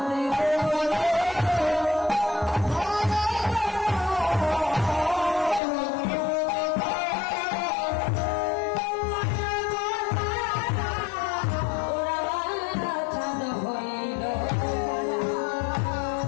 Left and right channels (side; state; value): right; drops out; at 5.6 s